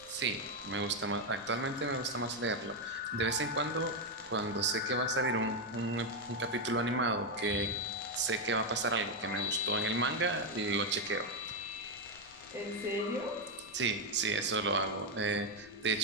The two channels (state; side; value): noise; left; rumble, 26 dB below the sound